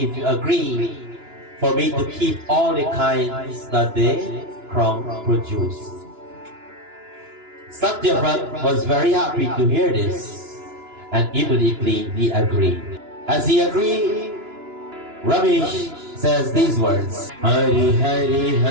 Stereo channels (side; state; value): left; late; 2.9 ms